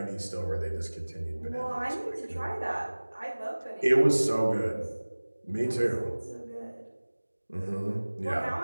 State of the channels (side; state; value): both; inverted; correlation -1.00